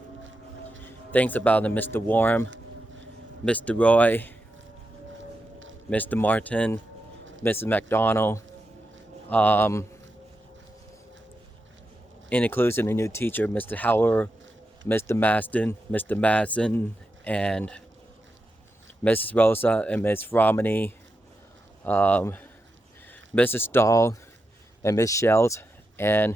things about the Mr. Warm, Mr. Roy, Mr. Martin, Mrs. McDonald, and includes a new teacher, Mr. Howard, Mr. Maston, Mr. Madsen, and Mrs. Rosa and Miss Romney, Mrs. Dahl and Miss Schelt, and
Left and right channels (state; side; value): normal; both; correlation 0.88